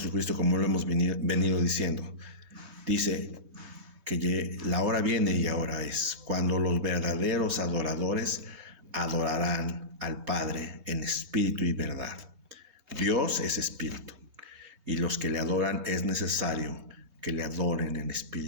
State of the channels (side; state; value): left; late; 3.2 ms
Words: como lo hemos venido diciendo, dice que la hora viene y ahora es, cuando los verdaderos adoradores adorarán al Padre en espíritu y verdad. Dios es espíritu, y los que le adoran es necesario que le adoren en